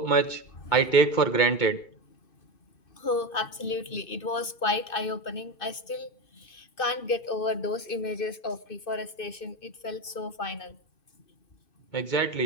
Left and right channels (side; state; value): right; late; 2.6 ms